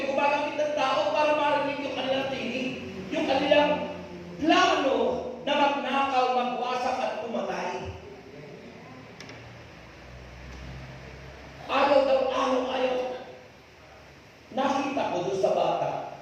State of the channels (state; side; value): identical; both; correlation 1.00